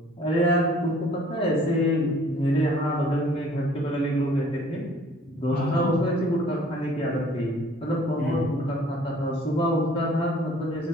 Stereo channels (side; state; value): both; normal; correlation 0.55